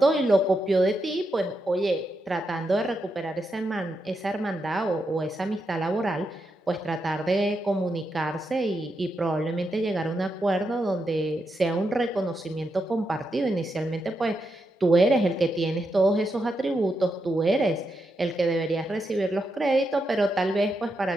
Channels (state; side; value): normal; both; correlation 0.84